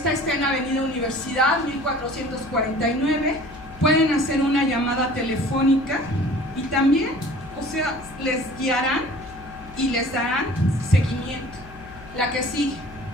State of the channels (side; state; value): left; noise; hum, 18 dB below the sound